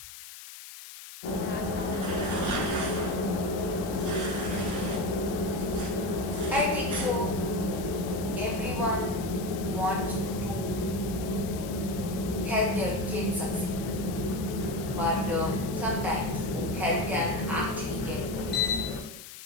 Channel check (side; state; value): left; noise; hiss, 14 dB below the sound